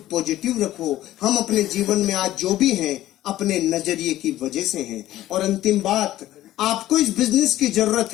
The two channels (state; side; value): quieter; right; 14.3 dB